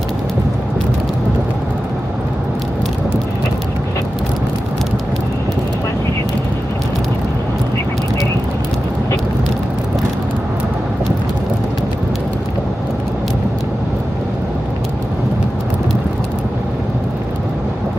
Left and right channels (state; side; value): normal; both; correlation 0.93